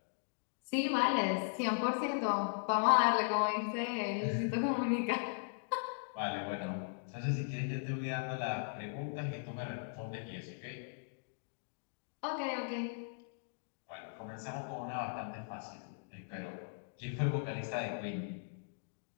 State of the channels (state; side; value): silent; right; digital silence